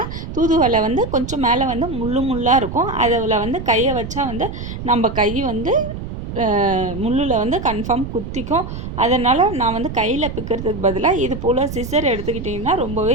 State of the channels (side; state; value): right; noise; rumble, 8 dB below the sound